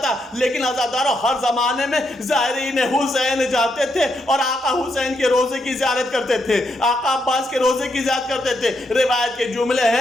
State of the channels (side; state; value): both; normal; correlation 0.80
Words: لیکن عزاداروں ہر زمانے میں زائرین حسین جاتے تھے اور آقا حسین کے روزے کی زیارت کرتے تھے، آقا عباس کے روزے کی زیارت کرتے تھے۔ روایت کے جملے